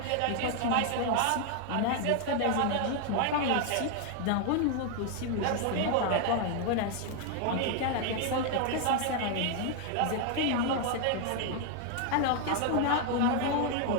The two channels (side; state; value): both; different; correlation 0.00